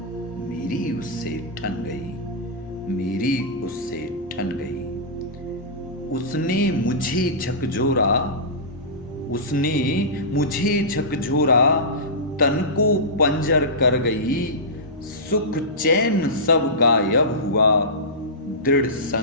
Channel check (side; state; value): both; normal; correlation -0.18